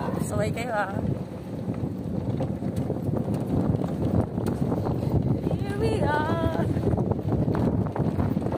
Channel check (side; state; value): both; identical; correlation 1.00